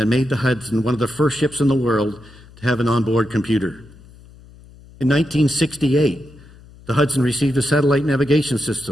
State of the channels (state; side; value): noise; left; hum, 23 dB below the sound